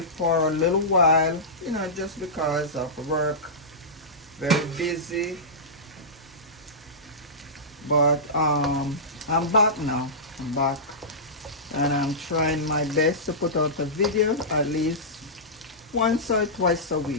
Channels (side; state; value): both; normal; correlation -0.16